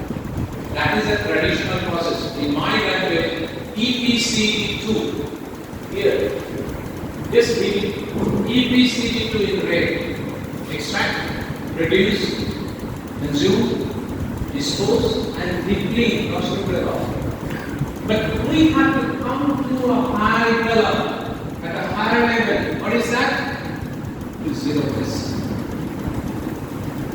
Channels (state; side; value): identical; both; correlation 1.00